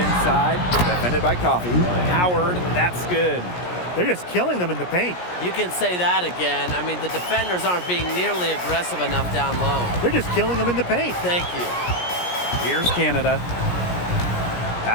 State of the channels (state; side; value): late; right; 17 ms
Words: defended by Coffee. Howard, that's good. They're just killing them in the paint. You can say that again. I mean, the defenders aren't being nearly aggressive enough down low. They're just killing them in the paint. Thank you. Here's Canada.